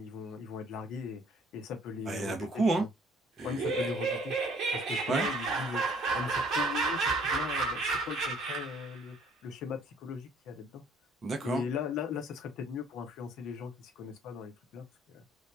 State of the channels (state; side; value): normal; both; correlation 0.58